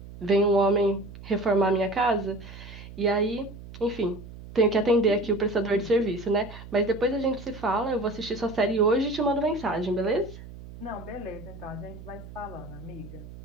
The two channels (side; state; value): right; noise; hum, 15 dB below the sound